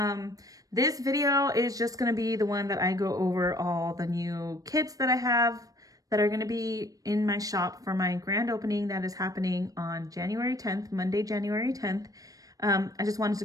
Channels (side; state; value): left; late; 0.17 ms